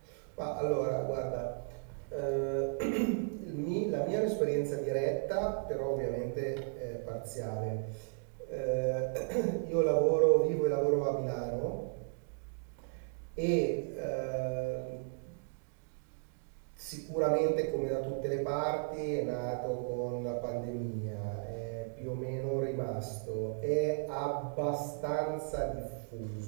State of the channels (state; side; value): silent; left; digital silence